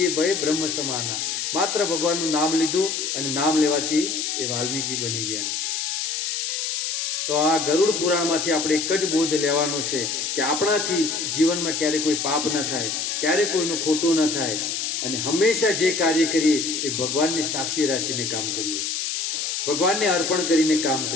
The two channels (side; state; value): left; noise; hiss, 2 dB below the sound